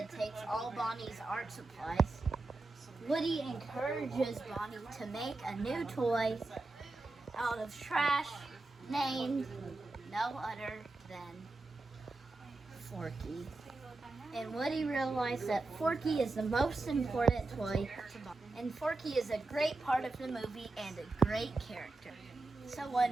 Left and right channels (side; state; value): left; quieter; 3.2 dB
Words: takes all Bonnie's art supplies, Woody encourages Bonnie to make a new toy out of trash named no other than Forky. And Woody realized that Forky is the most important toy to Bonnie. And Forky is a great part of the movie and a great character. So